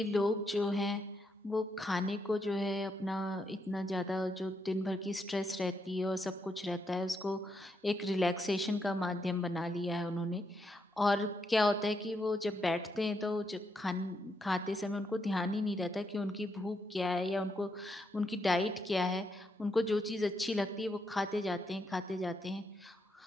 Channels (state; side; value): normal; both; correlation 0.79